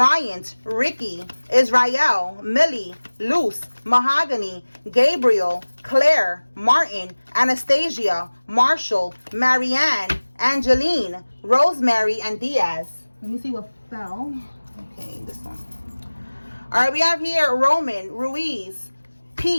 Ricky, Israel, Millie, Luce, Mahogany, Gabriel, Claire, Martin, Anastasia, Marshall, Marianne, Angeline, Rosemary, and Diaz. Let me see what fell. Okay, this one. All right, we have here Roman, Ruiz,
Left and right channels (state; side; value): inverted; both; correlation -1.00